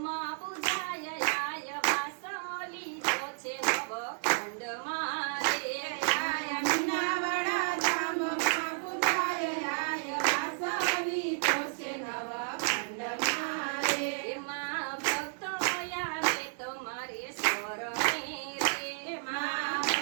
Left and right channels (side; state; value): left; silent; digital silence